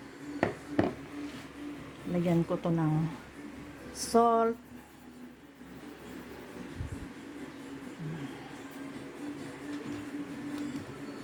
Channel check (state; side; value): identical; both; correlation 1.00